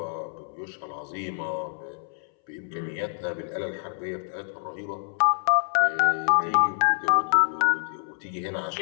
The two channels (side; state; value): right; silent; 60 dB below the other